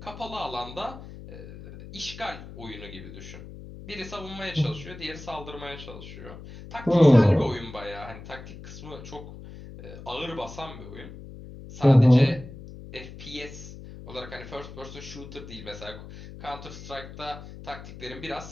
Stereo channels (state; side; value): noise; left; hum, 14 dB below the sound